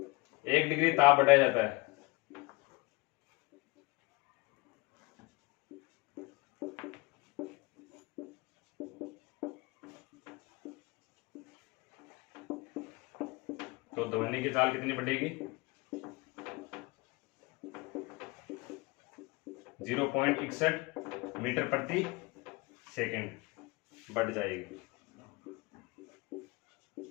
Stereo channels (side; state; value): right; quieter; 24.9 dB